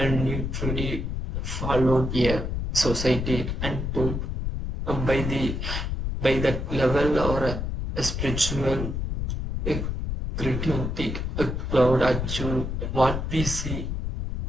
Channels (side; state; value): left; noise; rumble, 3 dB below the sound